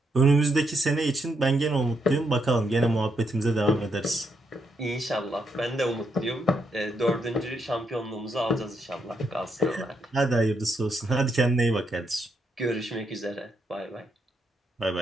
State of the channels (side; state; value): both; normal; correlation 0.78